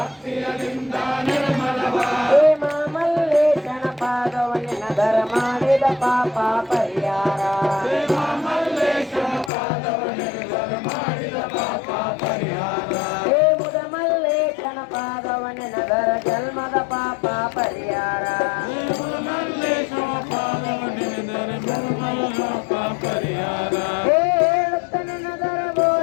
ಮಾಡಿದ ಪಾಪ ಪರಿಹಾರ ಹೇ ಮುದ ಮಲ್ಲೇಶನ ಪಾದವನೆನದರ ಜನ್ಮದ ಪಾಪ ಪರಿಹಾರ ಹೇ ಹೇಳುತ್ತನೆನದರ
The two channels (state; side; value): drops out; right; at 9.5 s